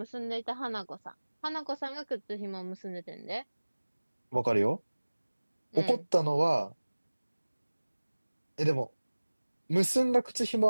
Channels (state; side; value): inverted; both; correlation -1.00